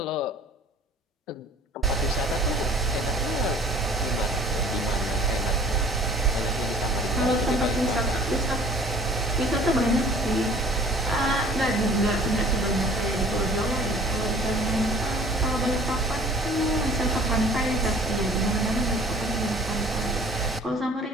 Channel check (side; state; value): both; normal; correlation 0.50